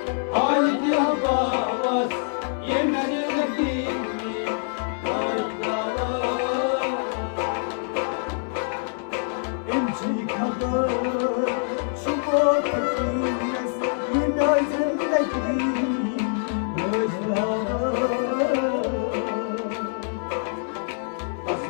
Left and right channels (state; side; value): silent; right; 61 dB below the other